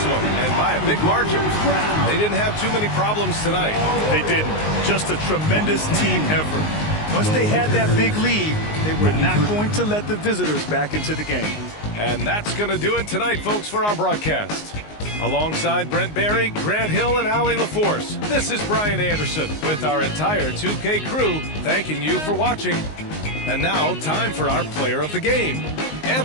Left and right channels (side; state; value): right; late; 19 ms